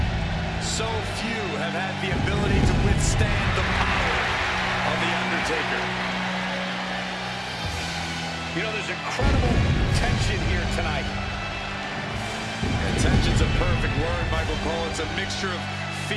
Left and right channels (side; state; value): both; identical; correlation 1.00